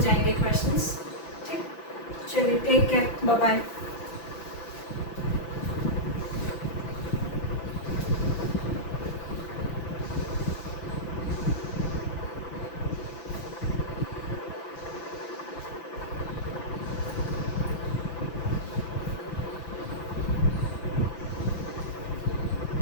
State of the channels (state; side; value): late; right; 5.9 ms